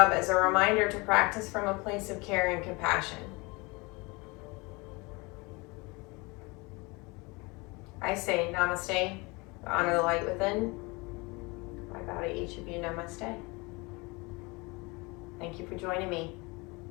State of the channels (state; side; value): quieter; right; 26.3 dB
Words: as a reminder to practice from a place of care and compassion. I say namaste, honor the light within. I bow to each of you, namaste. Thank you for joining me.